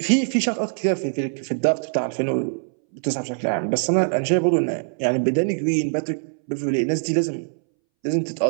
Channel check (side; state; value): left; silent; 63 dB below the other